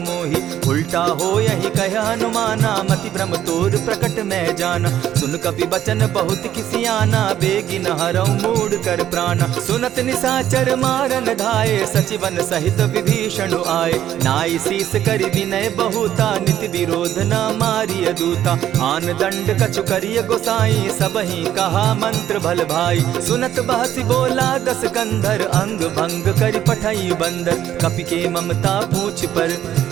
मोही। उल्टा हो यही कह हनुमाना, मति भ्रम तोर प्रकट मैं जाना। सुन कपि बचन बहुत किसियाना, बेगी न हरऊ मूड कर प्राणा। सुनत निसाचर मारन धाये, सचिवन सहित विभीषण आए। नाई शीस करि विनय बहुता, नित विरोध न मारिय दूता। आन दंड कछु करिय गोसाई, सबहि कहा मंत्र भल भाई। सुनत बहसी बोला दस कंधर, अंग भंग करि पठई बंदर। कपि के ममता पूछ पर,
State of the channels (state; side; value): quieter; left; 11.4 dB